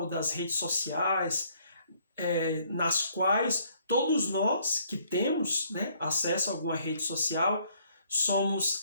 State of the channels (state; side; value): inverted; both; correlation -0.65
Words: das redes sociais, nas quais todos nós que temos acesso a alguma rede social